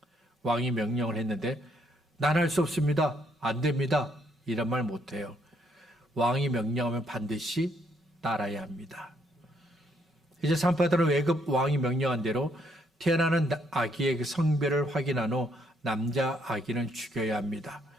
왕이 명령을 했는데 난 할 수 없습니다. 안 됩니다. 이런 말 못해요. 왕이 명령하면 반드시 따라야 합니다. 이제 산파들은 애굽 왕이 명령한 대로 태어나는 아기의 그 성별을 확인한 후 남자 아기는 죽여야 합니다.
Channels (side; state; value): both; normal; correlation 0.71